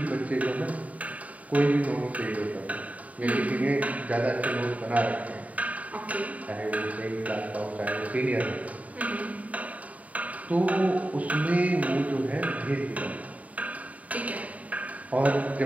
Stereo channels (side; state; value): left; late; 0.070 ms